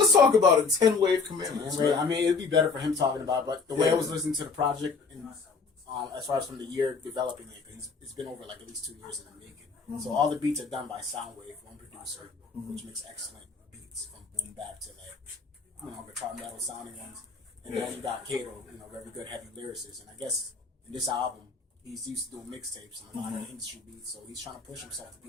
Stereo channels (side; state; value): right; quieter; 4.7 dB